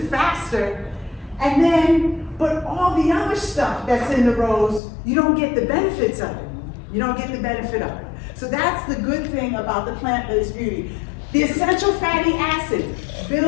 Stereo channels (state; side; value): drops out; right; at 4.8 s